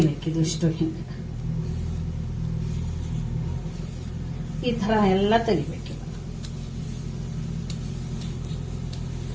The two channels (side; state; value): both; identical; correlation 1.00